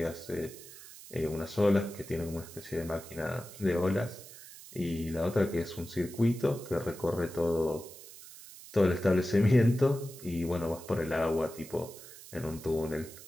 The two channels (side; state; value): right; noise; hiss, 17 dB below the sound